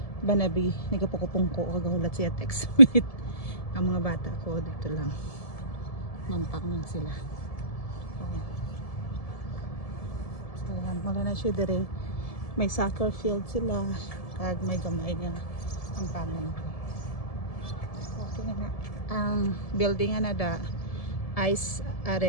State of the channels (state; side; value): late; right; 1.7 ms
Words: Banabi nagapukupungko kagahulat siya text with ang mga bata ko dito lang mampang lang sila. So wala na siya dire, may soccer field sila kag may gamay nga ang pangan. Okay na ang building na da Ice